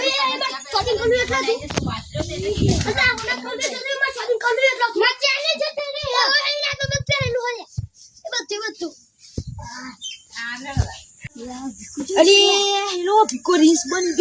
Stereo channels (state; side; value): identical; both; correlation 1.00